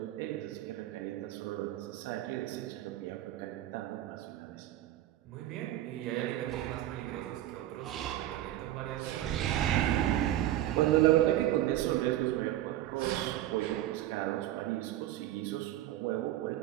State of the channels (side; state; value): left; quieter; 13.7 dB